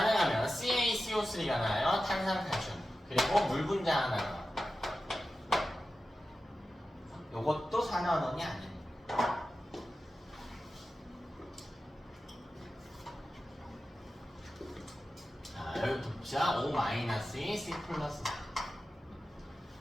CaCO3가 나와요. 탄산칼슘. 그리고 물 분자 하나 나와요. 요것도 산화원이 아닙니다. 자, 여기 봅시다. O-2, C 플러스 4.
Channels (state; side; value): normal; both; correlation 0.93